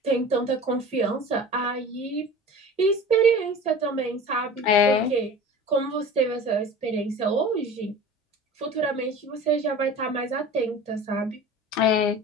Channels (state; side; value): normal; both; correlation 0.38